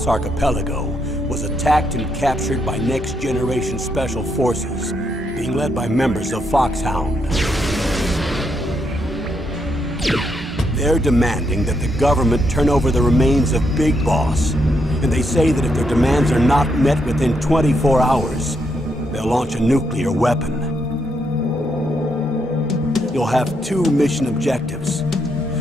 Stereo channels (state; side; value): normal; both; correlation 0.78